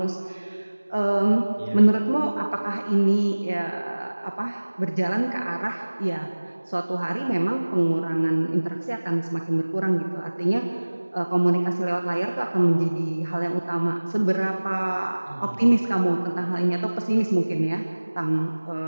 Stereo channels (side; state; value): both; inverted; correlation -1.00